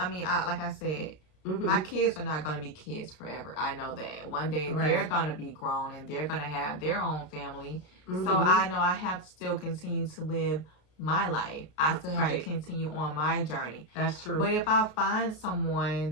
mean, like I said, my kids are not going to be kids forever. I know that. One day they're going to be grown and they're going to have their own family. So I know I have to still continue to live my life. I still have to continue on my journey. That's true. But if I find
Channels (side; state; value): right; late; 33 ms